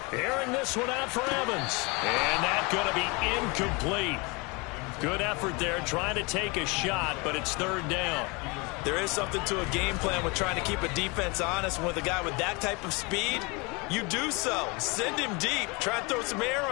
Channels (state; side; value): quieter; right; 28.0 dB